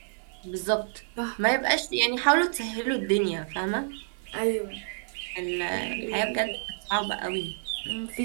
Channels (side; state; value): left; silent; digital silence